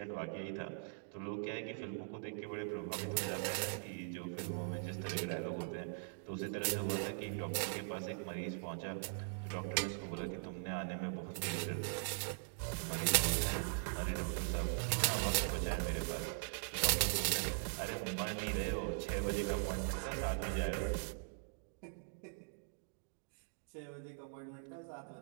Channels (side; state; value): left; silent; digital silence